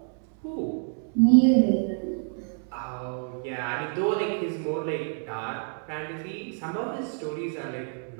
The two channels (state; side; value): silent; left; 60 dB below the other